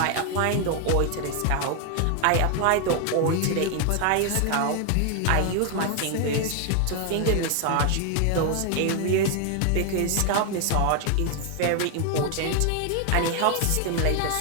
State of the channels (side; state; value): both; different; correlation 0.01